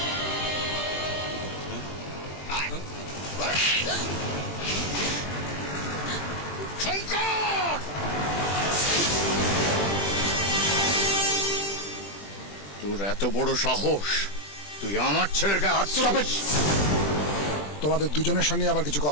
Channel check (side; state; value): right; late; 20 ms